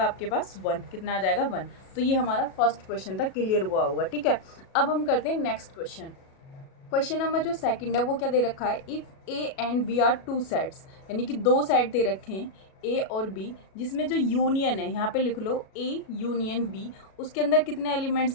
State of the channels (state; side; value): late; right; 37 ms